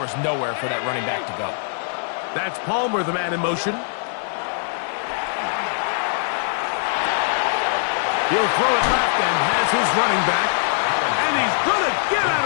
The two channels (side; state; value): right; silent; 64 dB below the other